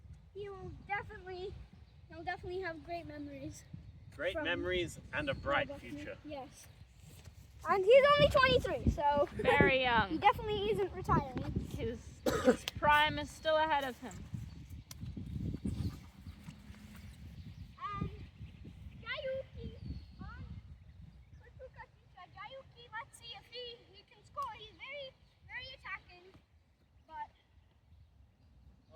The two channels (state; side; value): identical; both; correlation 1.00